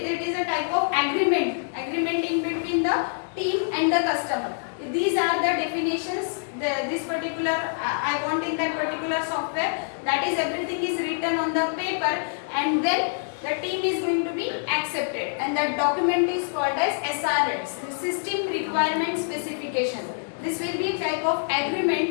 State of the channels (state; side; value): silent; right; digital silence